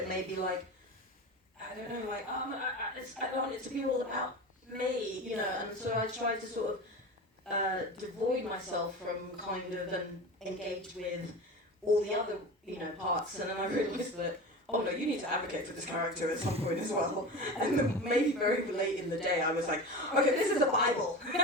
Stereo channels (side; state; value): both; normal; correlation 0.30